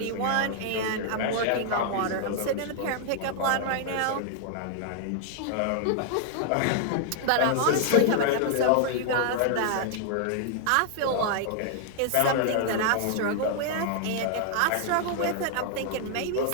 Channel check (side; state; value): both; different; correlation -0.01